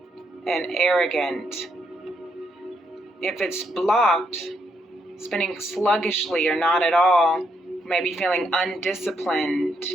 and arrogant. If it's blocked, spinning sluggishly or not at all, you might be feeling undisciplined,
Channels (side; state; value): both; normal; correlation 0.76